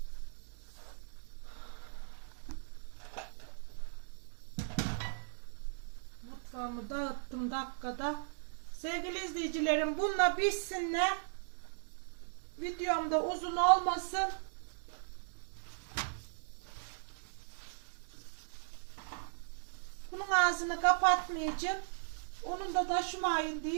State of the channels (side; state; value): left; silent; digital silence